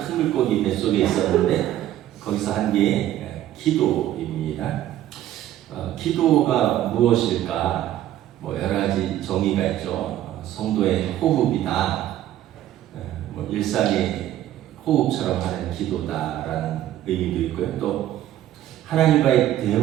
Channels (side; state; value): left; quieter; 12.8 dB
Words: 물고기 뱃속에 있었는데 거기서 한 게 기도입니다. 기도가 무엇일까? 여러 가지 정의가 있죠. 성도의 호흡이다. 일상의 호흡처럼 하는 기도다라는 의미도 있고요. 또 하나님과의